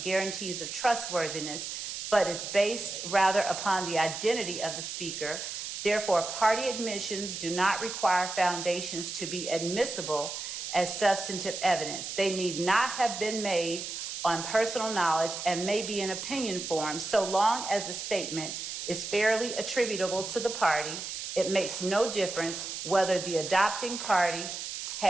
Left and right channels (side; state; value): right; noise; hiss, 6 dB below the sound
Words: guarantees of trustworthiness, but is based rather upon the identity of the speaker. Therefore, party admissions do not require foundations to be admissible as substantive evidence. They need not have been made on personal knowledge and may be in opinion form, so long as the statement is fairly attributable to the party. It makes no difference whether the adopting party